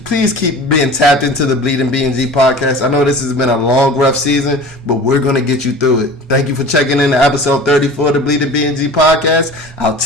being tapped into the Bleeding BnG podcast. I know this has been a long, rough season, but we're going to get you through it. Thank you for checking in to episode 34 of the Bleeding BnG podcast. I'll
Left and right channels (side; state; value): both; normal; correlation 0.39